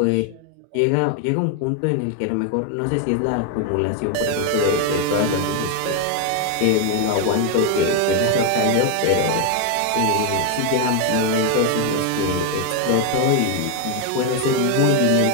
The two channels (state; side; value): different; both; correlation 0.01